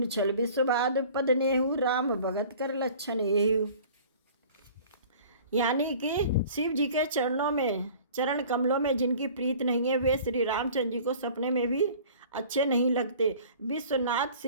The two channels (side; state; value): both; inverted; correlation -0.46